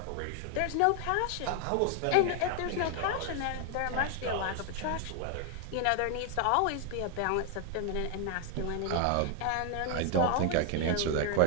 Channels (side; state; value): both; different; correlation 0.00